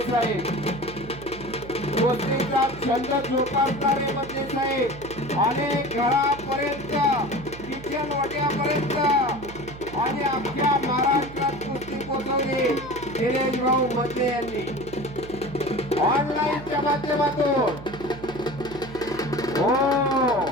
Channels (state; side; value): noise; right; hum, 15 dB below the sound